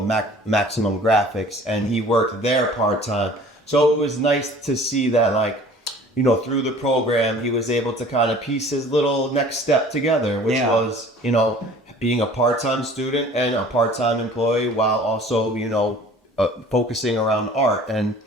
Maximum Graphics, and he worked there part-time. So it was nice to see that, like, you know, through the program, he was able to kind of piece his little next step together, which was, you know, being a part-time student and a part-time employee while also, you know, focusing around art. And,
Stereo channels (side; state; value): both; normal; correlation 0.48